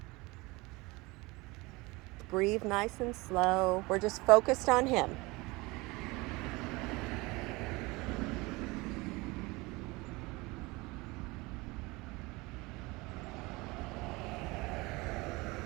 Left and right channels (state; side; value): quieter; left; 23.5 dB